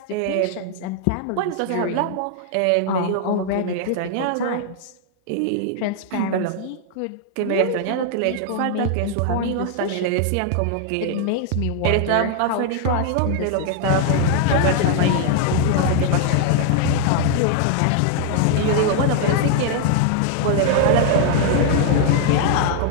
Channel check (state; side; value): different; both; correlation 0.00